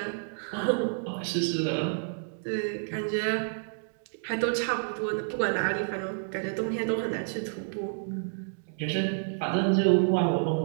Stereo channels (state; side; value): silent; left; digital silence